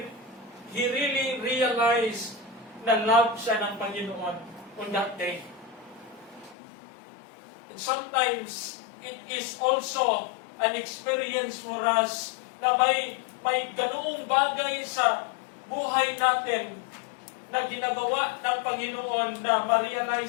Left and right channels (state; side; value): drops out; right; at 6.6 s